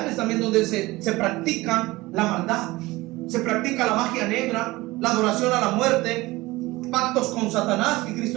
también donde se practica la maldad, se practica la magia negra, la adoración a la muerte, pactos con Satanás, que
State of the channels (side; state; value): left; quieter; 20.2 dB